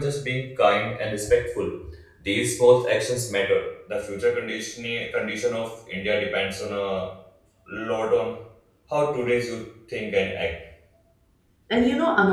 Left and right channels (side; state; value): both; identical; correlation 1.00